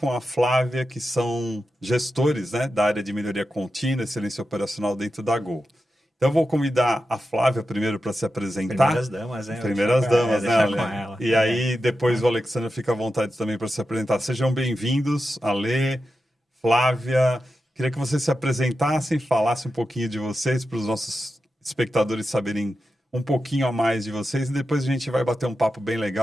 a Flávia, que são gestores, né, da área de melhoria contínua, excelência operacional dentro da Gol. Então, eu vou convidar a Flávia primeiro para se apresentar. Primeiras damas, né? Primeiras damas, né, Ale? Com ela. E aí, depois o Alexandre fica à vontade também para se apresentar. Sejam bem-vindos, Ale, Flávia. Queria que vocês se apresentassem, falassem um pouquinho de vocês, para os nossos espectadores saberem um pouquinho a mais de vocês. E depois a gente vai bater um papo bem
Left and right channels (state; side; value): normal; both; correlation 0.90